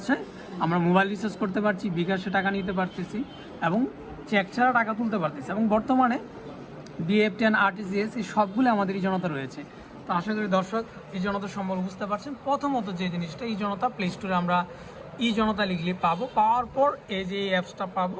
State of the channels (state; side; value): identical; both; correlation 1.00